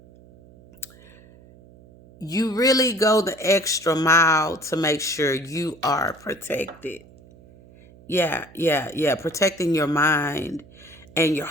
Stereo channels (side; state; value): right; noise; hum, 24 dB below the sound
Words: you really go the extra mile to make sure you are protected. Yeah, yeah, yeah. Protecting your mind and your